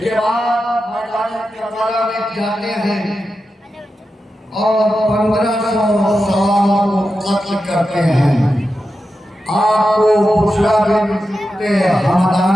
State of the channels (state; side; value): normal; both; correlation 0.90